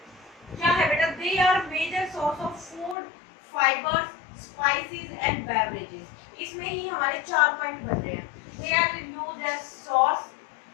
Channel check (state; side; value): drops out; right; at 3.0 s